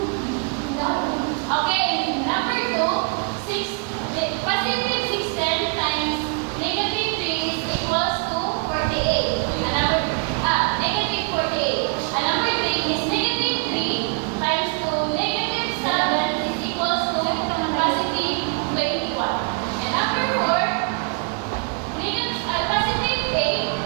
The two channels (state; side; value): quieter; left; 36.5 dB